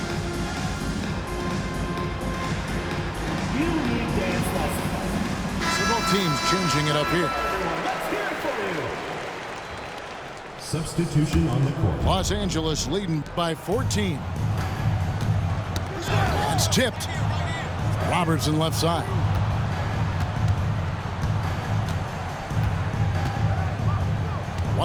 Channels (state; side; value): identical; both; correlation 1.00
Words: Teams changing it up here. Substitution on the court. Los Angeles leading by 14. It's tipped. Robertson left side.